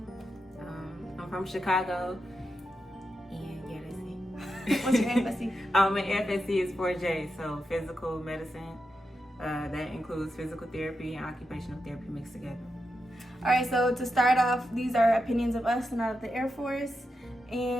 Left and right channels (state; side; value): normal; both; correlation 0.87